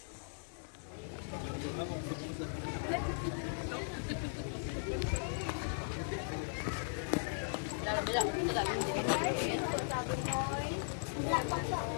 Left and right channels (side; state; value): right; silent; digital silence